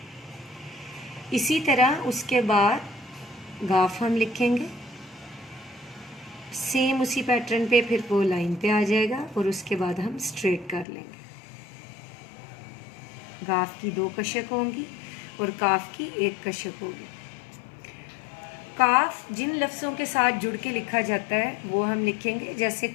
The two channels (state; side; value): drops out; right; at 10.9 s